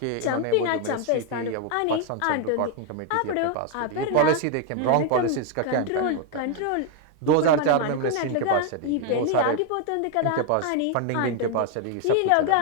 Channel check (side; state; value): both; different; correlation 0.01